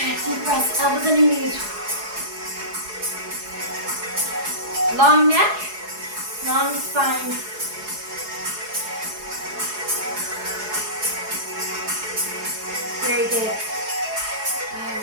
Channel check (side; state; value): left; late; 4.7 ms